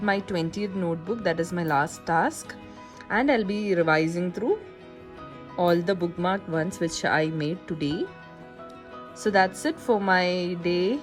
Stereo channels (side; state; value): both; identical; correlation 1.00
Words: my 20th notebook. That is my last task, and I'll be revising through all the bookmarked ones which I made today. So that's it for my day,